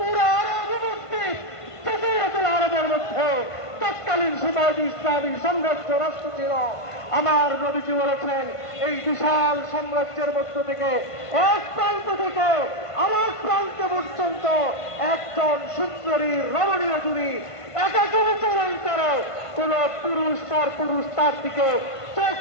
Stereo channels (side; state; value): right; late; 1.5 ms